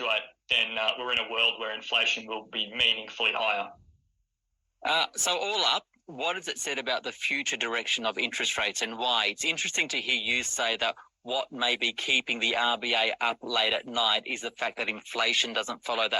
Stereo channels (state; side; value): identical; both; correlation 1.00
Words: then we're in a world where inflation will be meaningfully higher. So all up, what has it said about the future direction of interest rates and why? It's interesting to hear you say that what may be keeping the RBA up late at night is the fact that inflation doesn't follow